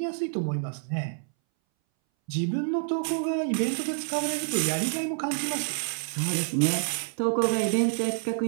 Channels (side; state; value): left; silent; 60 dB below the other